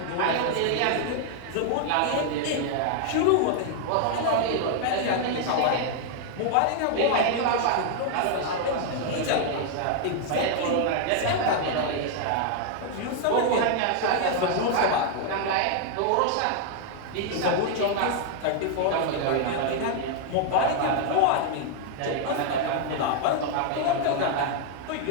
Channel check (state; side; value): different; both; correlation 0.00